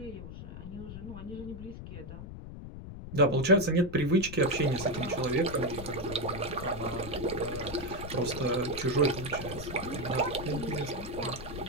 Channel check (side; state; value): left; noise; rumble, 10 dB below the sound